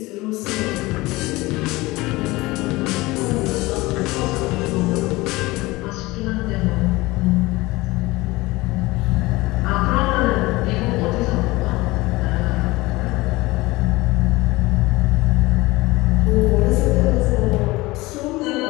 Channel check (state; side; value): quieter; right; 20.8 dB